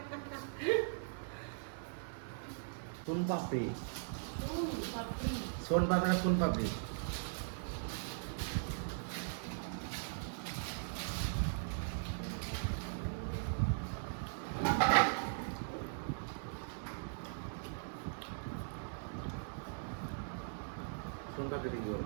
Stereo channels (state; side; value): silent; left; digital silence